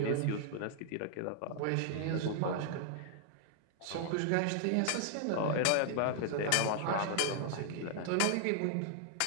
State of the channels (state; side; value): different; both; correlation 0.00